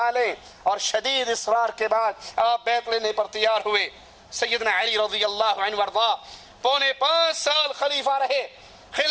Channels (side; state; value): both; identical; correlation 1.00